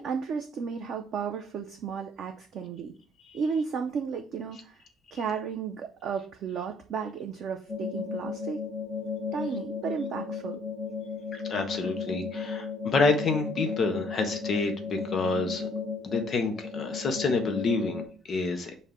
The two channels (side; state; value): both; normal; correlation 0.61